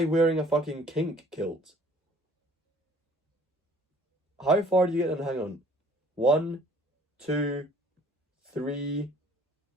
wearing a fucking kink kilt. How far do you get in? Hang on. 1, 2, 3...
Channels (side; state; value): both; normal; correlation 0.55